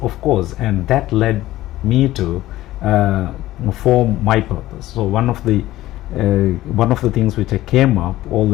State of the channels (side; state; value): right; quieter; 15.7 dB